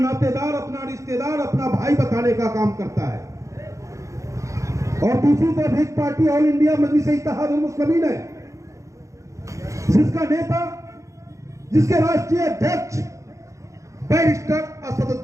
अपना रिश्तेदार, अपना भाई बताने का काम करता है, और दूसरी तरफ एक पार्टी ऑल इंडिया मजलिस-ए-इत्तेहादुल मुस्लिमीन है जिसका नेता, जिसके राष्ट्रीय अध्यक्ष बैरिस्टर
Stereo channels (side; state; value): left; late; 0.15 ms